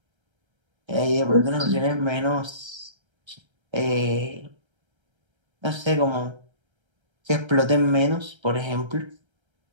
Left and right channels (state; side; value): late; left; 1.3 ms